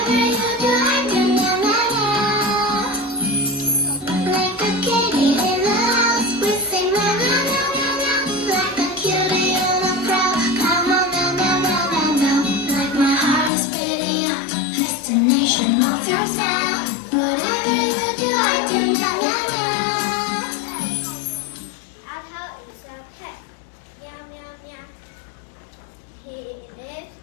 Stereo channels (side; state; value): right; drops out; at 13.5 s